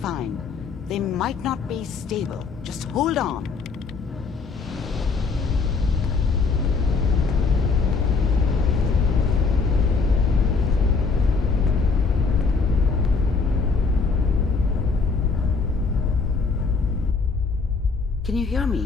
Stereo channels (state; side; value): quieter; right; 4.7 dB